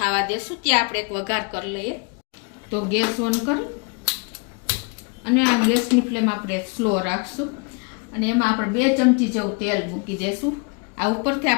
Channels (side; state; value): right; quieter; 33.1 dB